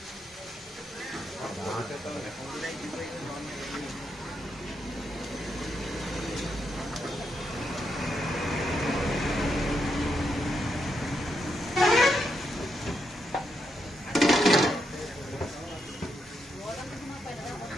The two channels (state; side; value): normal; both; correlation 0.81